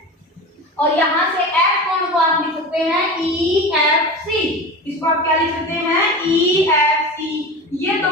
और यहाँ से F कोण को आप लिख सकते हैं EFC, इसको आप क्या लिख सकते हैं EFC। ये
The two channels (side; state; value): both; normal; correlation 0.29